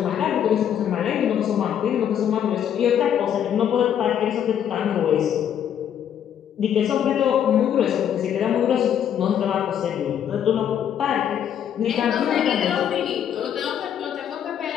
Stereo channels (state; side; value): quieter; right; 9.4 dB